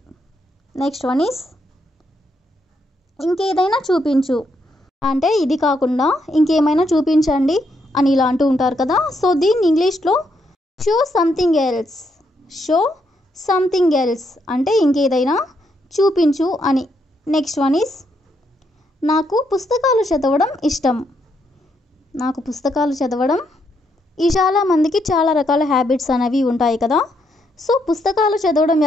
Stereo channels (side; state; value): both; normal; correlation 0.77